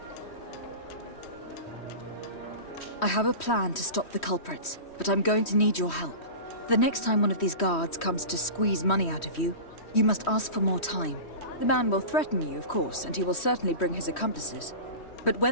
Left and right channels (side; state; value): right; late; 3.1 ms